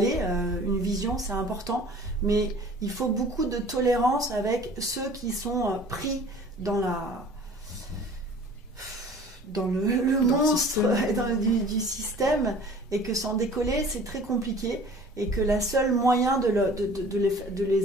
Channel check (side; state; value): both; normal; correlation 0.47